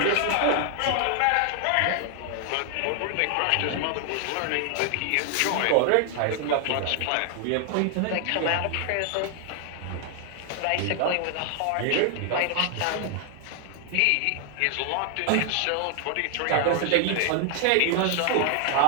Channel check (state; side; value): different; both; correlation 0.00